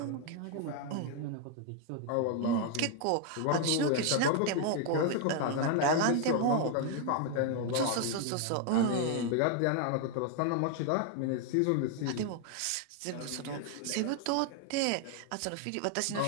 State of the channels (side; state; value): both; different; correlation 0.00